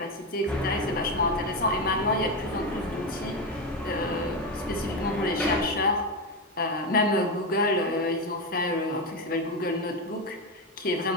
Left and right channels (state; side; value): normal; both; correlation 0.13